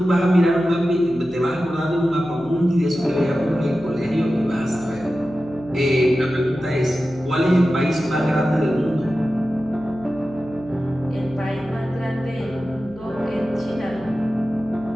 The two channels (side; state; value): left; noise; hum, 22 dB below the sound